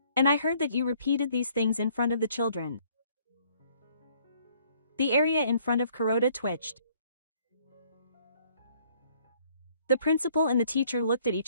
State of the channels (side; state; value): both; inverted; correlation -0.62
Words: And I heard that you repeated these things in front of the children. The area in front of Kuroda twitched. The principal and the teacher looked at